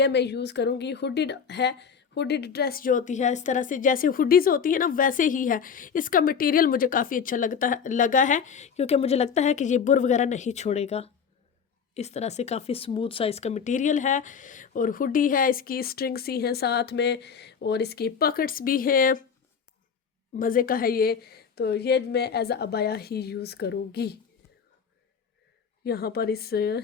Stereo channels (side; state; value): right; quieter; 6.6 dB